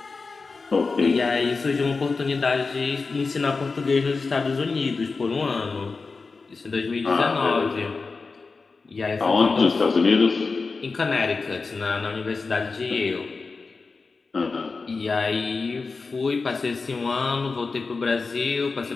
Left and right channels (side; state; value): right; quieter; 4.2 dB